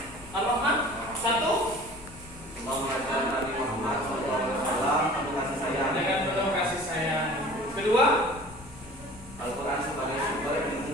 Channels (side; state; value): left; noise; rumble, 19 dB below the sound